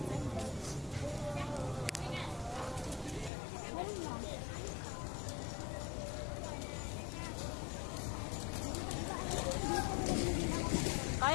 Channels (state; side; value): drops out; right; at 3.3 s